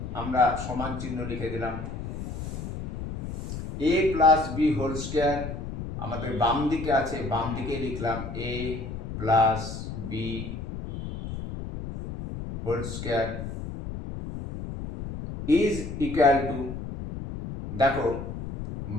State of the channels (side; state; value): left; noise; rumble, 7 dB below the sound